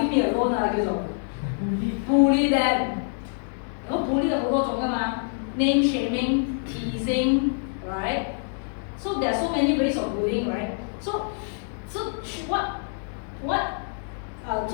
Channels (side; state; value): right; silent; digital silence